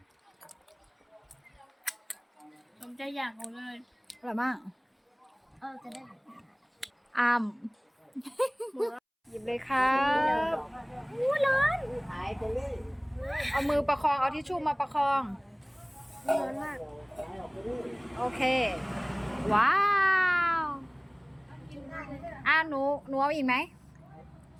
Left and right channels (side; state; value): both; identical; correlation 1.00